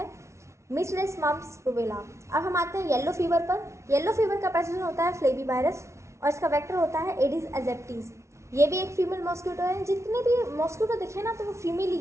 मीसल्स मम्प्स रुबेला। अब हम आते हैं येलो फीवर पर। येलो फीवर का पैथोजन होता है फ्लेवी वायरस और इसका वेक्टर होता है एडिस एजेप्टिस। ये भी एक फीमेल मॉस्किटो है। जितने भी मॉस्किटो दिखे ना तो वो फीमेल ही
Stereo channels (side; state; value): left; late; 0.13 ms